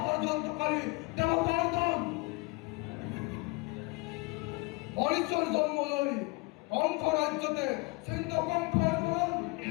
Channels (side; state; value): right; quieter; 25.8 dB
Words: ষড়যন্ত্রকারী দেবতার দল মরিচর জন্ম লই কণ্ঠ রাজ্যতে সিন্ধ কণ্ঠের বলন